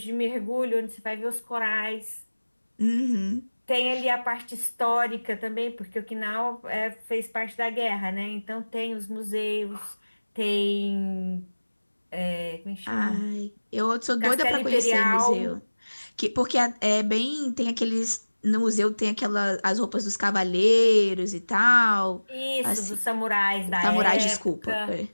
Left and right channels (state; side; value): inverted; both; correlation -1.00